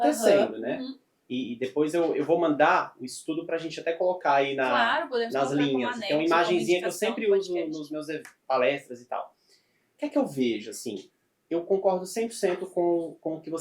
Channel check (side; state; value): both; identical; correlation 1.00